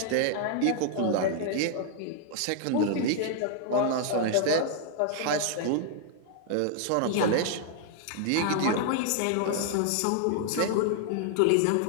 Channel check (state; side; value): different; both; correlation 0.00